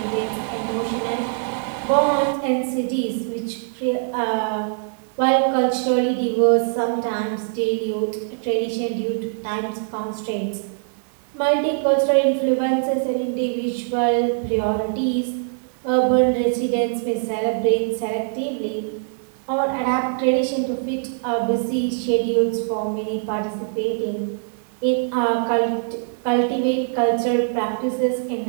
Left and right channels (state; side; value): silent; left; digital silence